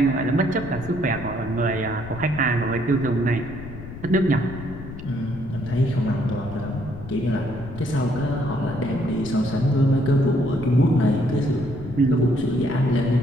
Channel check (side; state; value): left; noise; rumble, 12 dB below the sound